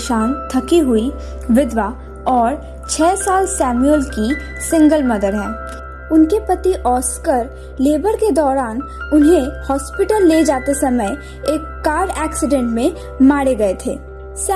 थकी हुई विधवा और 6 साल सैमुअल की सिंगल मदर है। उनके पति ऑस्कर लेबर के दौरान उन्हें हॉस्पिटल ले जाते समय एक कार एक्सीडेंट में मारे गए थे।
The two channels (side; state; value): both; identical; correlation 1.00